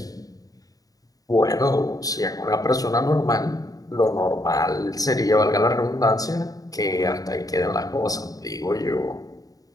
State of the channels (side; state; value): right; late; 0.18 ms